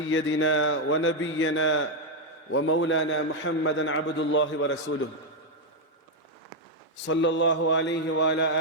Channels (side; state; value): both; normal; correlation 0.01